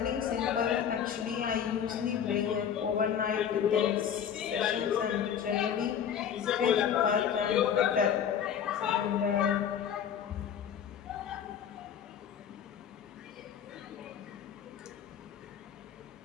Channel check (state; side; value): quieter; right; 8.5 dB